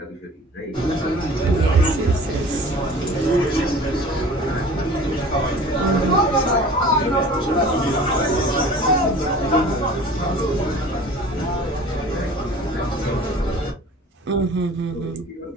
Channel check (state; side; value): normal; both; correlation 0.44